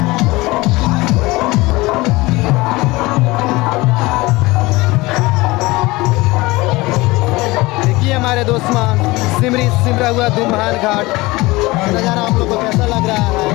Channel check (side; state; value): right; quieter; 21.4 dB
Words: देखिए हमारे दोस्मा सिमरी सिमरा हुआ दो महान घाट नज़ारा आप लोग को कैसा लग रहा है।